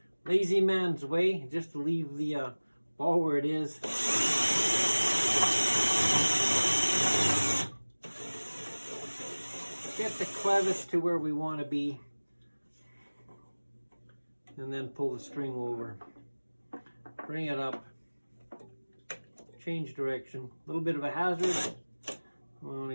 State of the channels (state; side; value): inverted; both; correlation -1.00